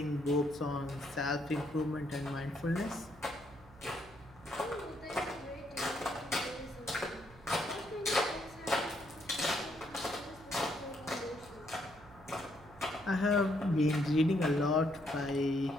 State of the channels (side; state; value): right; noise; hum, 22 dB below the sound